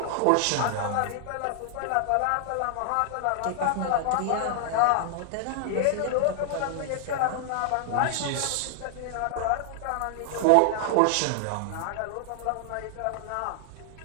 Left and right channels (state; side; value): different; both; correlation -0.01